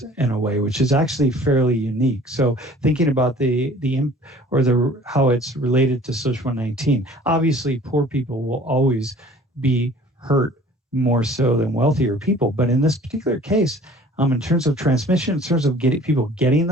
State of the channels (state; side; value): normal; both; correlation 0.50